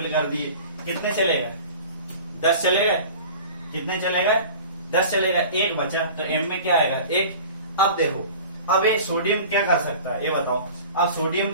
कर दिए। कितने चलेगा 10 चलेगा। कितने चलेगा 10 चलेगा। 1 बचा तो M में क्या आएगा 1। अब देखो अब ये सोडियम क्या कर सकता है ये बताओ। अब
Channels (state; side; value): inverted; both; correlation -0.41